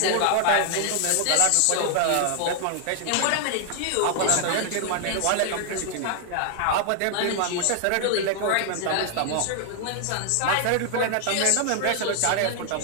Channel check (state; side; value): different; both; correlation 0.00